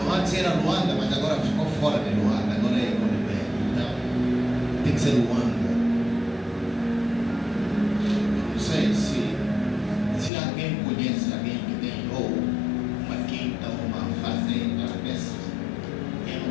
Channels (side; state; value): right; drops out; at 10.3 s